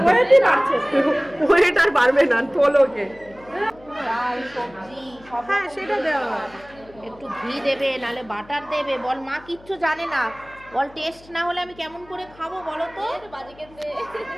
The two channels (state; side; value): noise; left; hum, 24 dB below the sound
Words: ওয়েট আর বাড়বে না, তোলোকে। ডাল সবজি সব হ্যাঁ, সেটা দেওয়া হয়। একটু ঘি দেবে, নাহলে বাটার দেবে। বল মা কিচ্ছু জানে না, বল টেস্ট না হলে আমি কেমন করে খাবো বলো তো,